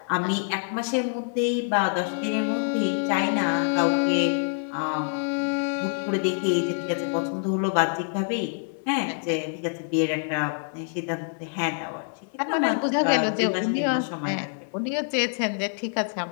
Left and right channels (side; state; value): right; silent; 61 dB below the other